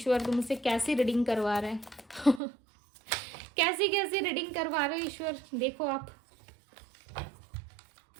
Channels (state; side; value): drops out; left; at 2.4 s